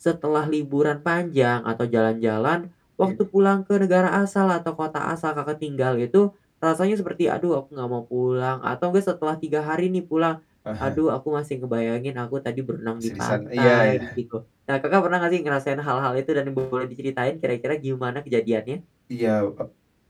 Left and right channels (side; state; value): both; identical; correlation 1.00